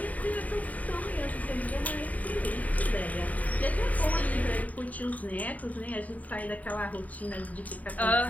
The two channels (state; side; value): late; right; 0.072 ms